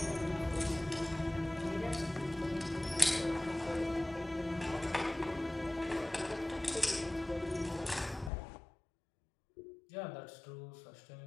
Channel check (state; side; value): drops out; right; at 8.3 s